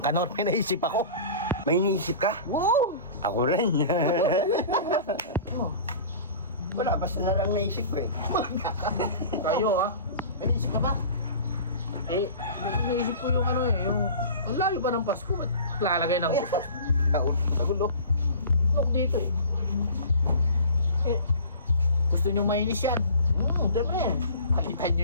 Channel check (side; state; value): both; inverted; correlation -0.40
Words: kanor, may naisip ako. May iniisip ka? Wow! Ako rin. Wala, basta na lang naisip ko eh. Kayo ah. May naisip ka ba? Eh, naisip ko yung ano eh, yung... Ang layo pa ng Pasko, at lalagay ng Nagulo. Look dito eh. Eh, gusto nyo mainis yan? Diyan mo na yan. Palitan nyo